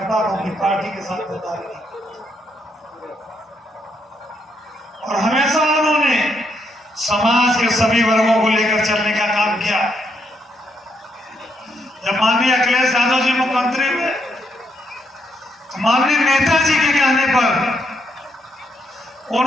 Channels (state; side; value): normal; both; correlation 0.77